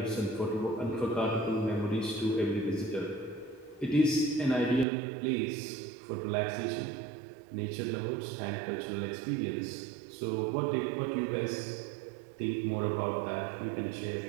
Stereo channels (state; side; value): drops out; left; at 4.9 s